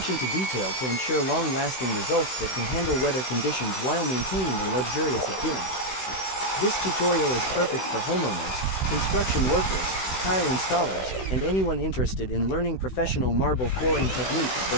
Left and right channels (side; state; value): right; late; 16 ms